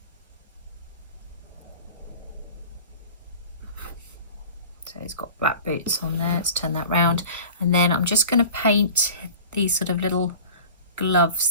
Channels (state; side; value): inverted; both; correlation -0.39